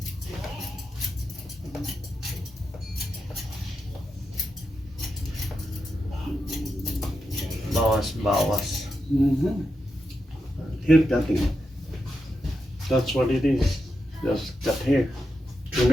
Bawas-bawas. Hair cutting. That's what it is. Just cut hair.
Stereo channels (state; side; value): normal; both; correlation 0.87